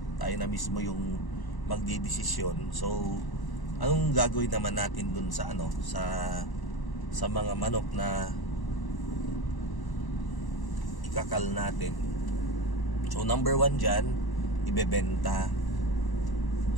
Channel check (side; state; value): right; late; 1.0 ms